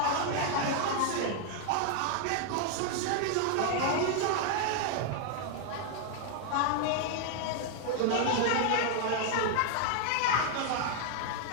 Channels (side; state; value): both; different; correlation 0.00